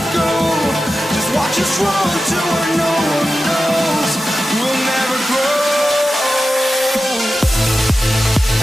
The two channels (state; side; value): normal; both; correlation 0.93